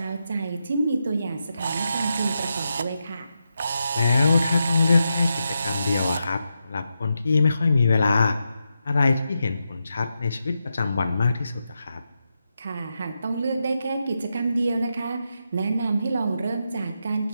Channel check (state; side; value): inverted; both; correlation -0.86